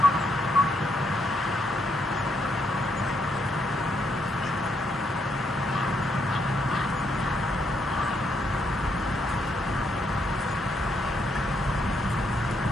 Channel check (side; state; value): both; normal; correlation 0.76